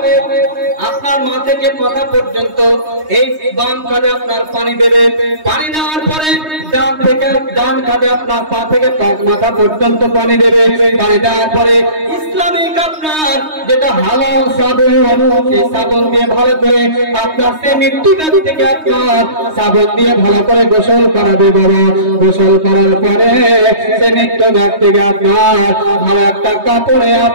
আপনার মাথা থেকে মাথা পর্যন্ত এই বাম কাঁধে আপনার পানি দেবে, পানি দেওয়ার পরে ডান থেকে ডান কাঁধে আপনার পা থেকে মাথা পর্যন্ত পানি দেবে, পানি দেওয়ার পরে ইসলামিক আপনার যেটা হালাল সাবুন, সেই সাবুন দিয়ে ভালো করে আপনার সে মৃত্যু ব্যক্তিকে আপনার সাবুন দিয়ে ভালো করে গোসল করাবে বাবা। গোসল করার পরে সে মৃত্যু ব্যক্তিকে আপনার ভালো একটা কাপড়ে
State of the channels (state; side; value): late; left; 3.2 ms